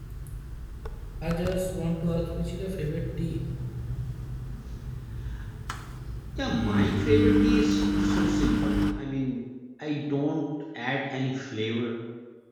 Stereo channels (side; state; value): both; identical; correlation 1.00